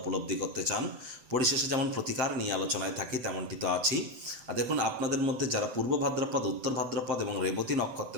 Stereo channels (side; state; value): left; late; 7.7 ms